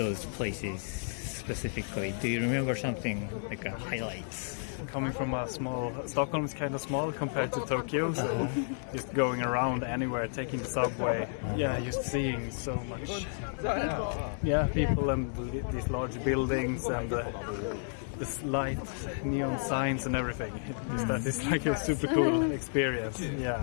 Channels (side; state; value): right; silent; digital silence